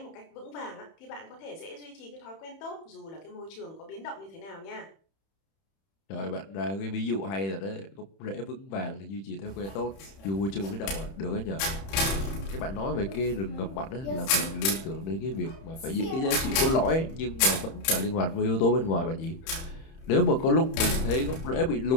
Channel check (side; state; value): right; late; 31 ms